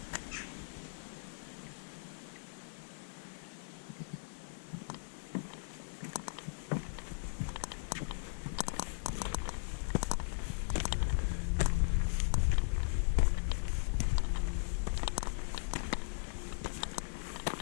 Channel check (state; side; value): silent; right; 52 dB below the other